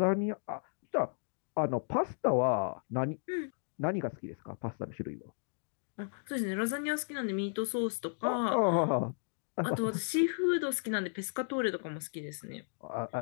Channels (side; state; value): right; silent; digital silence